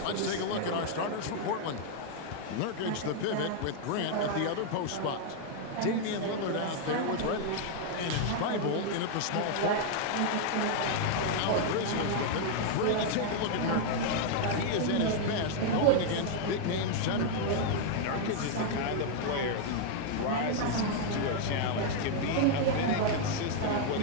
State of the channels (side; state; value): both; different; correlation 0.00